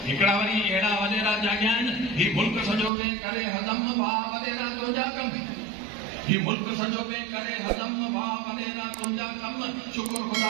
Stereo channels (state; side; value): drops out; left; at 2.9 s